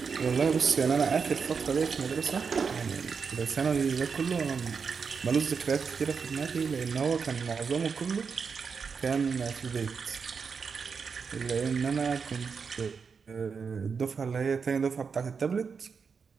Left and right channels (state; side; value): quieter; left; 5.7 dB